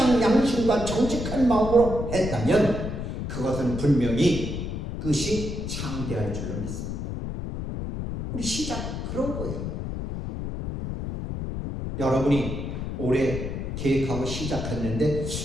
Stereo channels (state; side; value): noise; left; rumble, 5 dB below the sound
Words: 양심과 정직한 마음으로 했다면 그것은 분명히 끝이 창대할 줄로 믿습니다. 우리 시작 그런 거예요. 여러분이 올해 계획하고 시작했는데